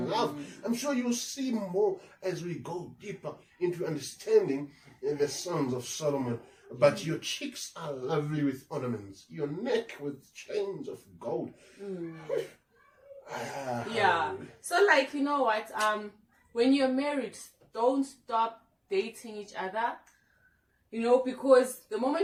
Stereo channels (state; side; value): identical; both; correlation 1.00